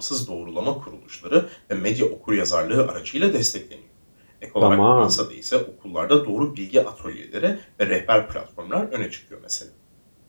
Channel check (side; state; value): both; inverted; correlation -1.00